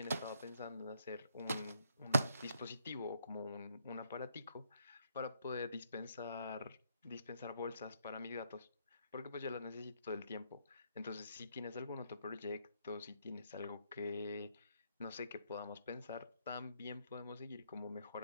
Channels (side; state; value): both; inverted; correlation -0.72